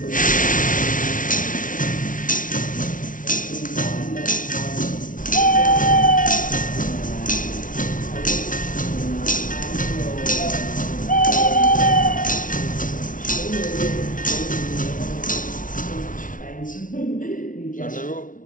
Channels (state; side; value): late; right; 0.38 ms